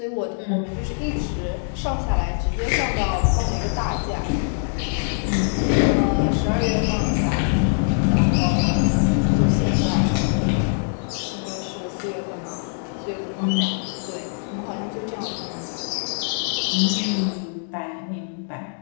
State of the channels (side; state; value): right; silent; 63 dB below the other